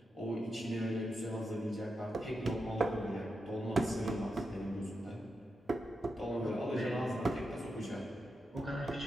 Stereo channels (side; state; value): both; normal; correlation 0.87